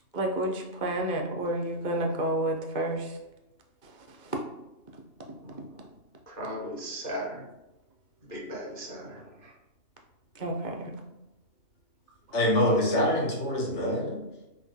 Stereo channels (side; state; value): right; late; 2.8 ms